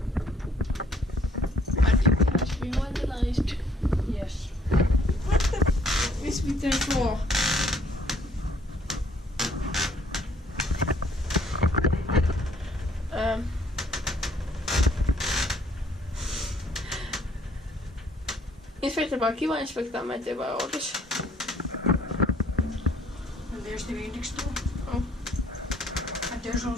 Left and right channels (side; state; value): both; normal; correlation 0.63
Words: But it has been vandalized. Yes. What the f is with the floor? Inspecta by Kiwa, Inspecta Imatra by Otis. And there's the index too. Oh. And there's